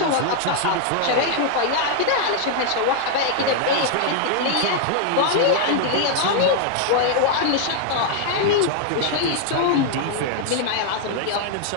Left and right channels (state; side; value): different; both; correlation 0.00